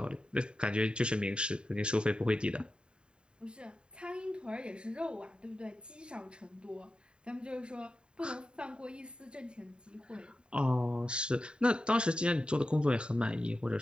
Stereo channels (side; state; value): left; late; 0.050 ms